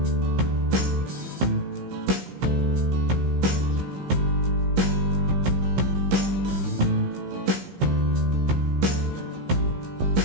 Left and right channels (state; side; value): late; left; 15 ms